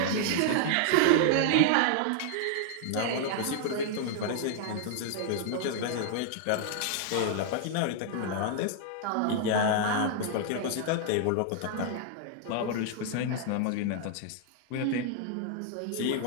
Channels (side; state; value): both; different; correlation -0.01